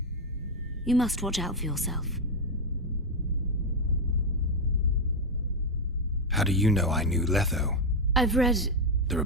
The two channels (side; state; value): both; normal; correlation 0.04